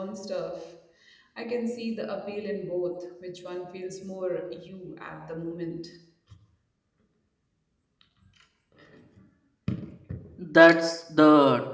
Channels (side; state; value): both; identical; correlation 1.00